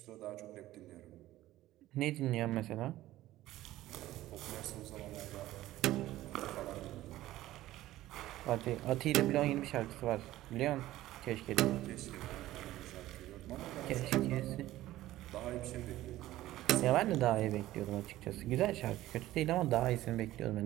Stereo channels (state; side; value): quieter; left; 15.4 dB